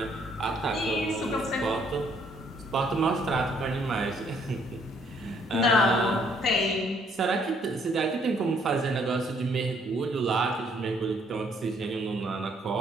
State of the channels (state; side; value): normal; both; correlation 0.66